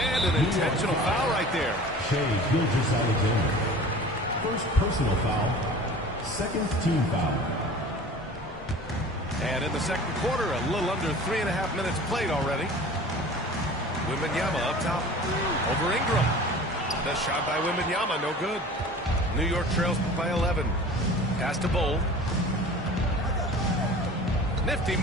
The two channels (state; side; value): normal; both; correlation 0.41